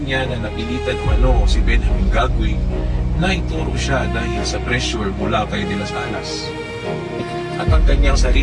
niya na napilitan umano si Benjamin Gagui na ituro siya dahil sa pressure mula kay De Las Alas. At ang kanyang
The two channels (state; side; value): identical; both; correlation 1.00